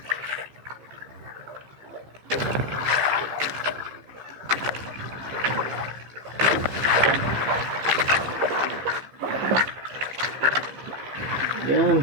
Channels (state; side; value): late; left; 15 ms